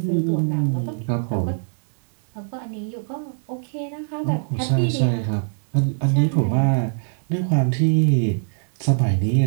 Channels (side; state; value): left; silent; digital silence